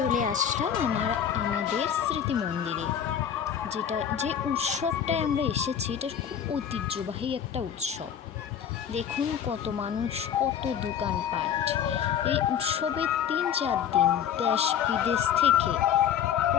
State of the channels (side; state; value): right; quieter; 8.7 dB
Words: আসলাম আমাদের স্মৃতি মন্দিরে। যে উৎসবটায় আমরা এসেছি, এটা খুব ঐতিহ্যবাহী একটা উৎসব। দেখুন কত মানুষ, কত দোকানপাট। এই উৎসবের 3-4 দিন দেশ বিদেশ থেকে